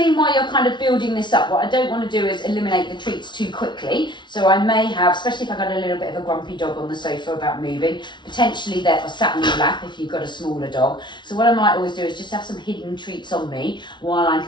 while you're kind of building this up, what I don't want to do is eliminate the treats too quickly. So I may have, especially if I've got a little bit of a grumpy dog on the sofa about moving, potentially they're sat on your lap if you've got a smaller dog. So what I might always do is just have some hidden treats on me while I'm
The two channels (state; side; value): late; right; 0.22 ms